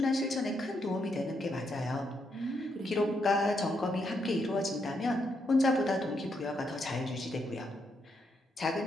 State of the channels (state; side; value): normal; both; correlation 0.78